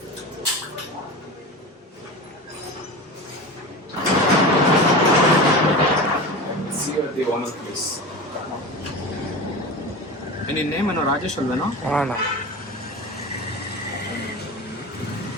See you at the owner place. ನಿನ್ನ name ಏನೋ ರಾಜೇಶ್ ಅಲ್ವೇನೋ? ಹಾಂ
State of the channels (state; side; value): normal; both; correlation 0.29